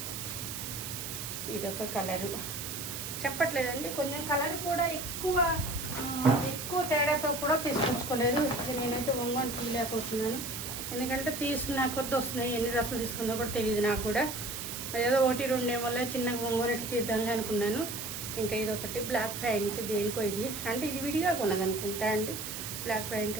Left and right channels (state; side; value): noise; right; hiss, 6 dB below the sound